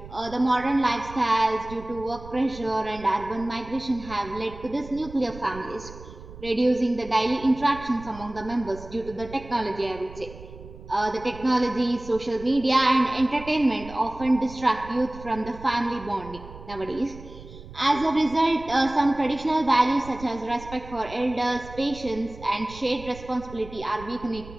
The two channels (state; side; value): noise; right; rumble, 16 dB below the sound